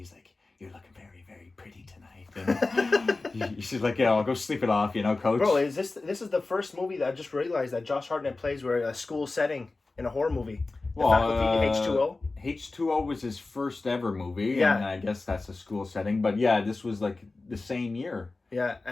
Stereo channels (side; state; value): right; quieter; 3.5 dB